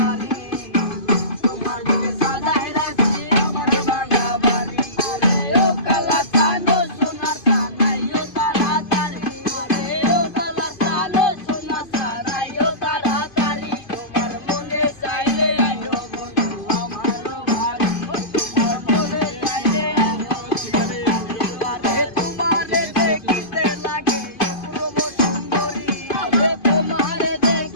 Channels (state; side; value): late; right; 2.5 ms